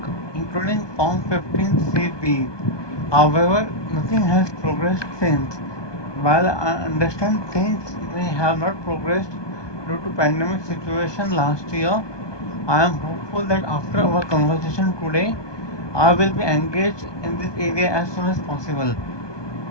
including Form 15CB. However, nothing has progressed since. While I understand things may have not progressed due to pandemic situation last year, I am hopeful that after our conversation today, I will be engaged in this area as soon as possible.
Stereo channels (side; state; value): right; late; 1.2 ms